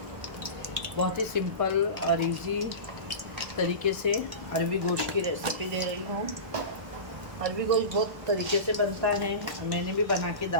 बहुत ही सिंपल और इजी तरीके से अरबी गोश्त की रेसिपी दे रही हूँ। अरबी गोश्त बहुत तरीके से बनता है, मैंने भी बना के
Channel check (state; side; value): late; left; 1.3 ms